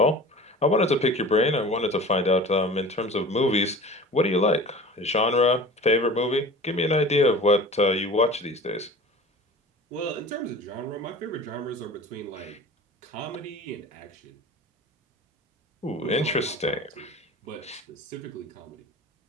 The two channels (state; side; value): normal; both; correlation 0.39